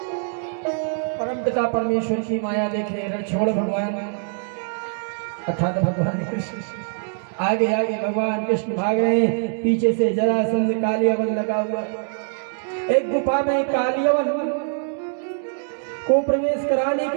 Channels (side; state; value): left; silent; 63 dB below the other